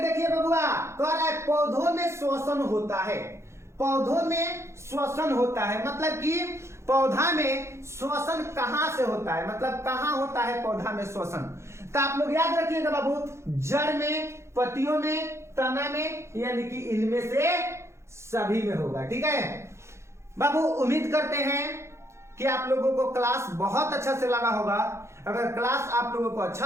बबुआ, कह रहा है पौधों में श्वसन होता है। पौधों में श्वसन होता है मतलब कि पौधा में श्वसन कहां से होता है, मतलब कहां होता है पौधा में श्वसन। तो आप लोग याद रखिएगा बाबू, जड़ में, पत्तियों में, तना में, यानी कि इनमें से सभी में होगा। ठीक है बाबू, उम्मीद करते हैं कि आप लोगों को क्लास बहुत अच्छा से लगा होगा। अगर क्लास आप लोगों को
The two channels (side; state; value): left; late; 0.13 ms